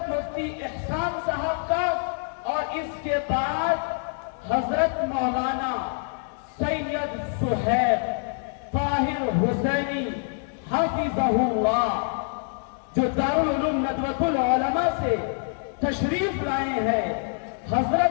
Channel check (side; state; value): right; silent; 59 dB below the other